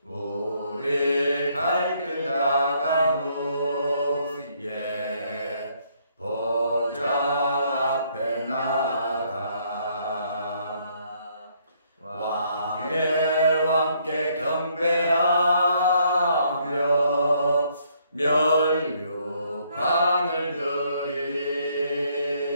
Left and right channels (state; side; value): inverted; both; correlation -0.69